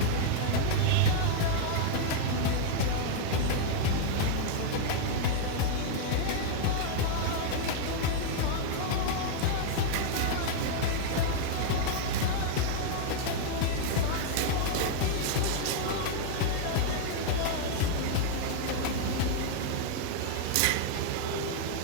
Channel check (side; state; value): both; different; correlation -0.01